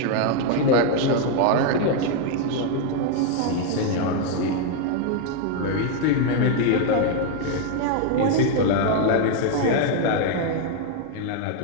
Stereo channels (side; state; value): both; different; correlation 0.00